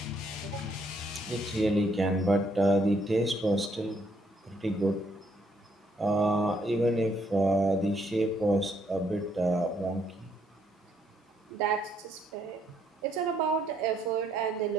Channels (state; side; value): normal; both; correlation 0.71